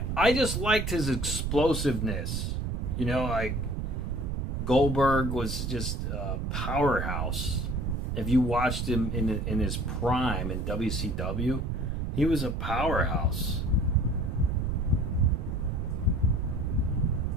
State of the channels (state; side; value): noise; right; rumble, 2 dB below the sound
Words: I just liked his explosiveness. You know, like Goldberg was just a powerhouse. If you watched him in his prime in WCW, he was a powerhouse.